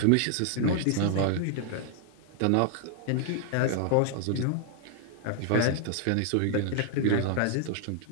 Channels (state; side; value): different; both; correlation 0.00